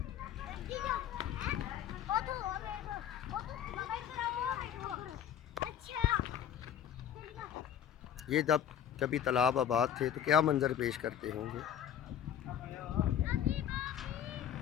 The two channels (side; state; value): right; quieter; 9.6 dB